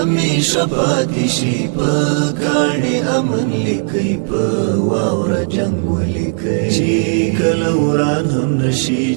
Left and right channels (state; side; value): silent; left; digital silence